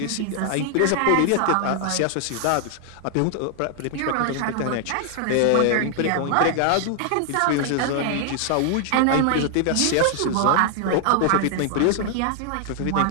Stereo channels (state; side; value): different; both; correlation 0.00